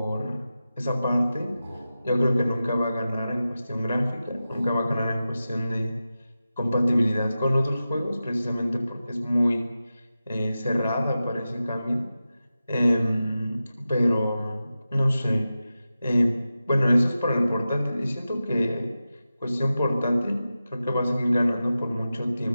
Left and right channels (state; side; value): inverted; both; correlation -0.93